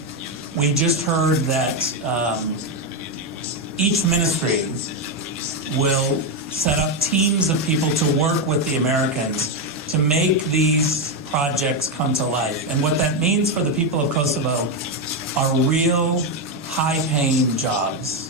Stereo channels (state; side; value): normal; both; correlation 0.06